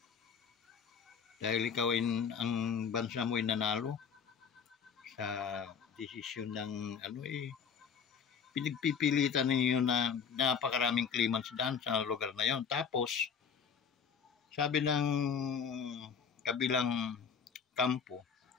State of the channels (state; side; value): quieter; right; 6.7 dB